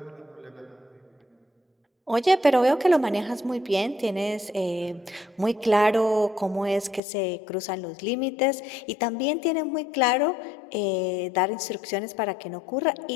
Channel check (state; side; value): drops out; right; at 7.0 s